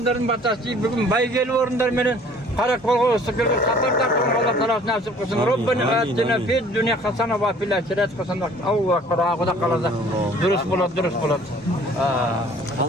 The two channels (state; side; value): normal; both; correlation 0.53